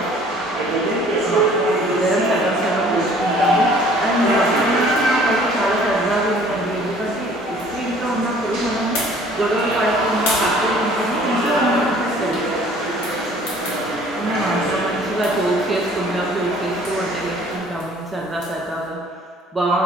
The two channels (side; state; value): both; normal; correlation 0.54